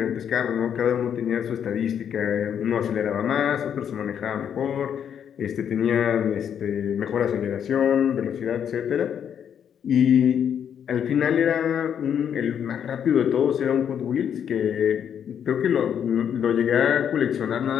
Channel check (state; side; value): quieter; right; 8.5 dB